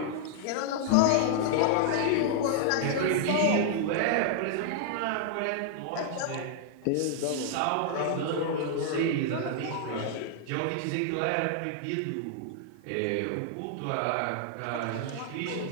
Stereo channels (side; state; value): both; different; correlation 0.00